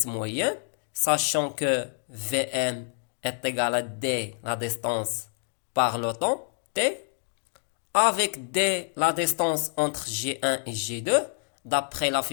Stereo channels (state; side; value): silent; right; 60 dB below the other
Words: moyenne, sachant que Vm est égal à d, la distance, par le temps, t, avec d, la distance entre G1 et G2, d'après la